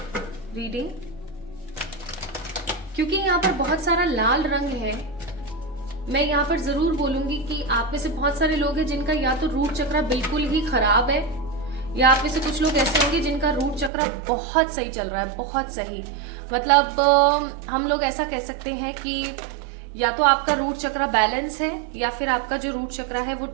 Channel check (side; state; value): left; drops out; at 13.9 s